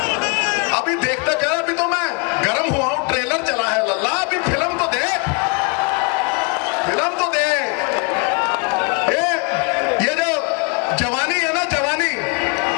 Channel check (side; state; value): right; quieter; 32.5 dB